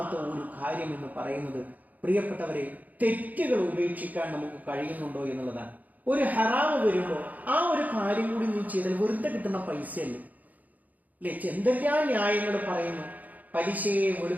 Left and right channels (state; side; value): late; left; 0.079 ms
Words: ഒരു കാര്യം എന്ന് പറയുന്നത്, പ്രിയപ്പെട്ടവരെ, തെറ്റുകൾ ഉപേക്ഷിക്കാൻ നമുക്ക് കഴിയുന്നുണ്ടോ എന്നുള്ളതാണ്. ഒരു ഹറാമ് വരുമ്പോൾ ആ ഒരു കാര്യം കൂടി നീ ചെയ്താൽ വെറുതെ കിട്ടുന്ന പൈസയല്ലേ അല്ലെ? എന്തെല്ലാം ന്യായങ്ങൾ പറയുന്നു, പലിശയെ